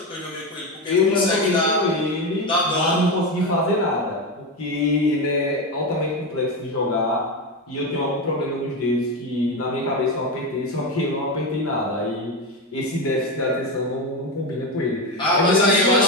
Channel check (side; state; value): both; normal; correlation 0.15